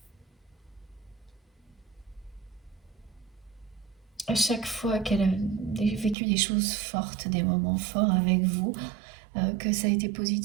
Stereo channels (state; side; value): drops out; left; at 6.2 s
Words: À chaque fois qu'elle a vécu des choses fortes, des moments forts avec vous, que ça a été